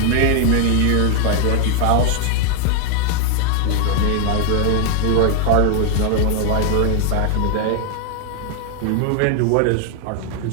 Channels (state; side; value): different; both; correlation 0.00